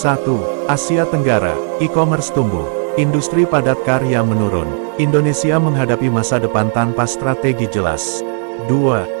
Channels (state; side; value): silent; left; 64 dB below the other